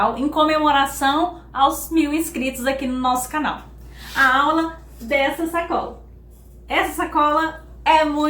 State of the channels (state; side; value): identical; both; correlation 1.00